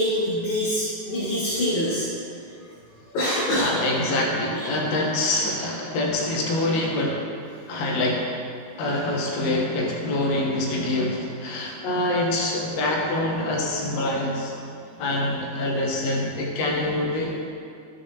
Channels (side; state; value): right; late; 19 ms